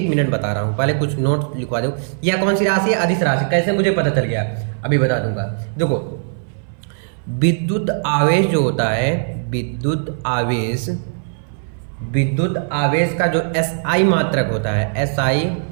मिनट बता रहा हूँ, पहले कुछ नोट लिखवा दो। यह कौन सी राशि है, अदिश राशि। कैसे मुझे पता चल गया, अभी बता दूंगा। देखो विद्युत आवेश जो होता है, विद्युत आवेश का जो SI मात्रक होता है, SI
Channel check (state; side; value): silent; left; 60 dB below the other